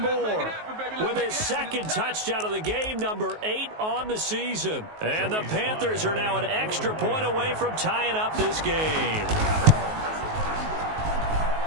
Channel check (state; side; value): late; left; 19 ms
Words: with his 2nd touchdown of the game, number 8 on the season. And the Panthers are now an extra point away from tying up this game.